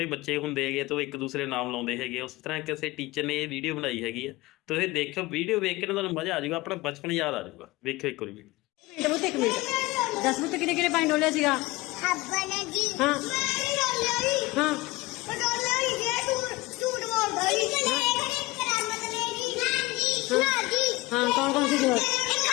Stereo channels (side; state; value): right; quieter; 20.9 dB